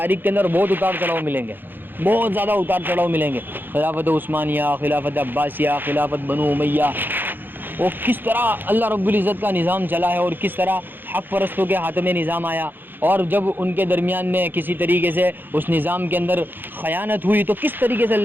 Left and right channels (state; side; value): late; left; 0.094 ms